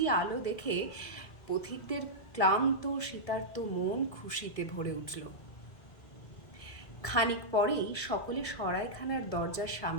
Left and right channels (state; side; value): late; right; 1.7 ms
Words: আলো দেখে পথিকদের ক্লান্ত শীতার্ত মন খুশিতে ভরে উঠল। খানিক পরেই সকলে সরাইখানার দরজার